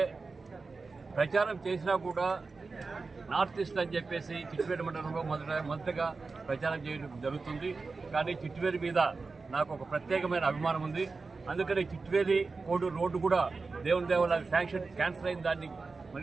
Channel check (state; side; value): quieter; left; 4.1 dB